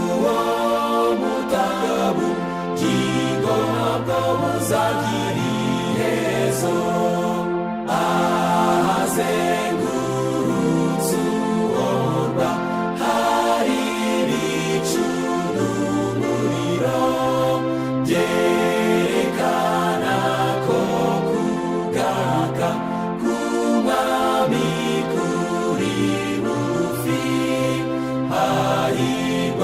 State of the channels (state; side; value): noise; left; hum, 29 dB below the sound